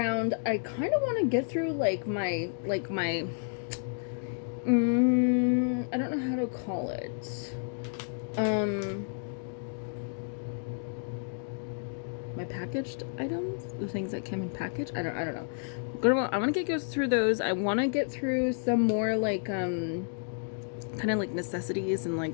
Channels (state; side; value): silent; right; 57 dB below the other